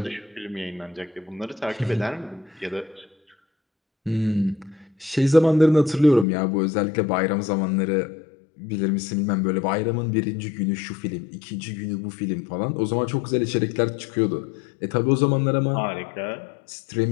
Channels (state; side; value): drops out; right; at 6.2 s